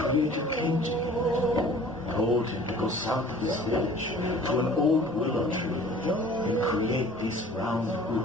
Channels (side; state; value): both; normal; correlation 0.48